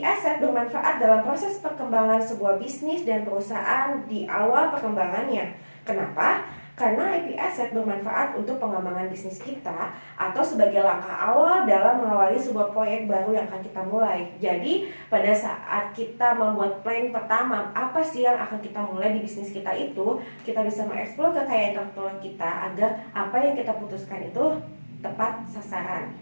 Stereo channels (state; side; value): inverted; both; correlation -1.00